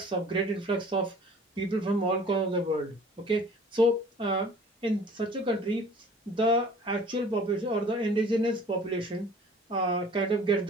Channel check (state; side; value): normal; both; correlation 0.48